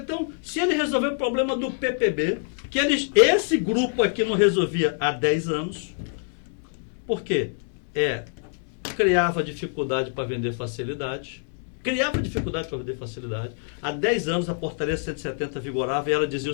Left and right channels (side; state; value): right; silent; digital silence